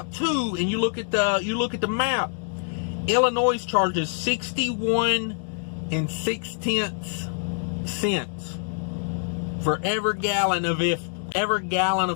2 and you look at the map, Illinois charges 61 and 6 cents for every gallon of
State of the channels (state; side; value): silent; right; digital silence